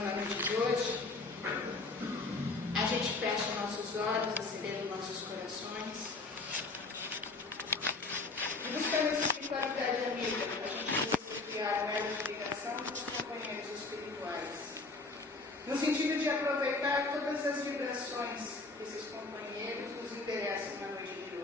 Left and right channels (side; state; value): right; quieter; 3.6 dB